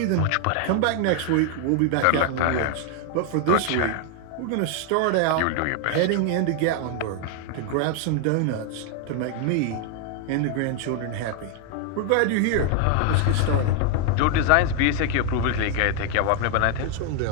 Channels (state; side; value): different; both; correlation 0.01